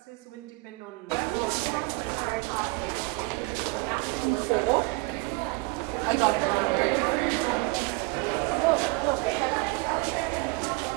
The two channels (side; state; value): left; quieter; 25.9 dB